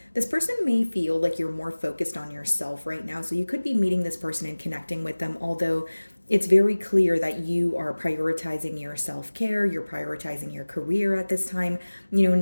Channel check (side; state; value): both; inverted; correlation -1.00